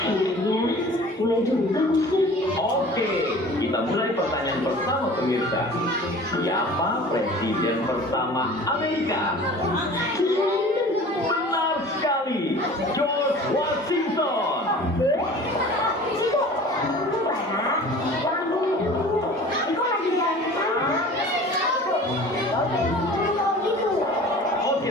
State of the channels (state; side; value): normal; both; correlation 0.43